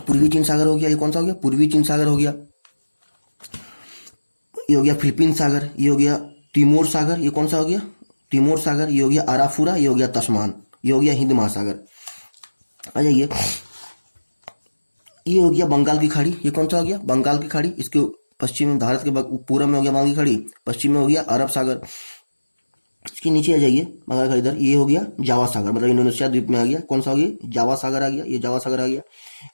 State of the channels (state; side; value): inverted; both; correlation -1.00